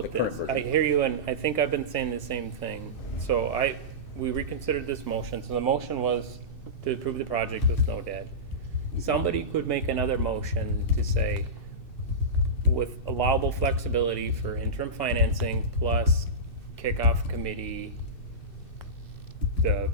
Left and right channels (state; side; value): late; right; 2.6 ms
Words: the current this? version. I hear you, and I think I've been saying the same thing. So we reconsidered this motion, so the motion was to approve the project with no debt. Somebody could make another motion to say, with allowable flexibility for interim financing plus kickoff committee, the